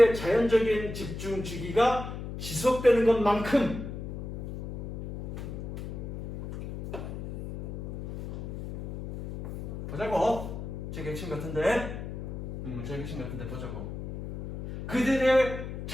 자연적인 집중 주기가 지속되는 것만큼 보자고. 제 핵심 같은데? 제 핵심 같은데 보자고. 그들의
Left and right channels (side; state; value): left; noise; hum, 8 dB below the sound